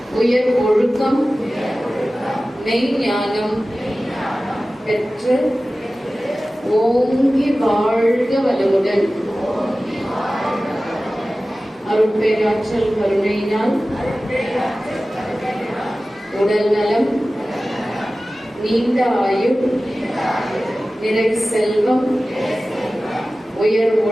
உயர் ஒழுக்கம், மெய்ஞானம் பெற்று ஓங்கி வாழ்க வளமுடன். அருட்பேராற்றல் கருணையினால் உடல் நலம், நீண்ட ஆயுள், நிறை செல்வம், உயர்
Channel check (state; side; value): normal; both; correlation 0.96